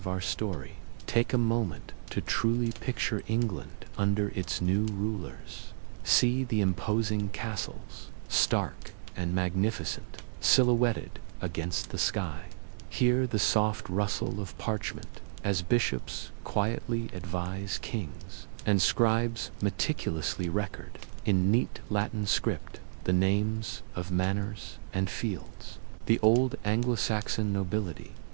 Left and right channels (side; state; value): left; silent; digital silence